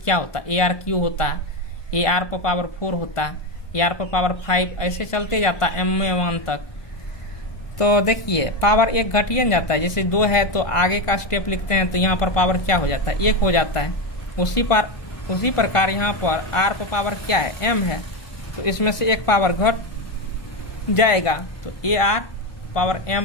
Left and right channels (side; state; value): right; late; 1.5 ms